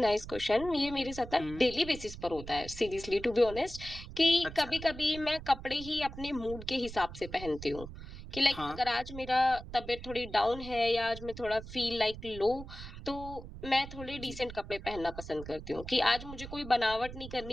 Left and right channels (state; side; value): noise; right; rumble, 12 dB below the sound